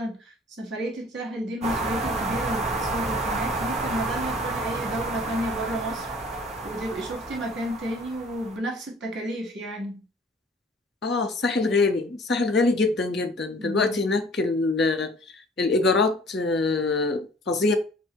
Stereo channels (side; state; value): both; normal; correlation 0.51